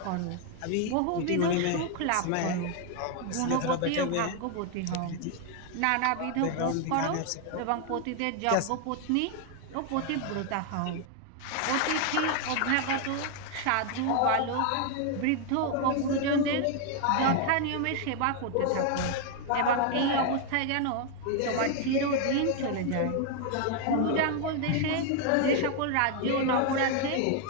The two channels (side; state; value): both; different; correlation 0.00